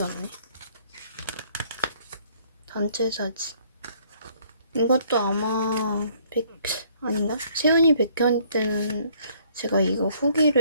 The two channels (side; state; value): both; inverted; correlation -0.62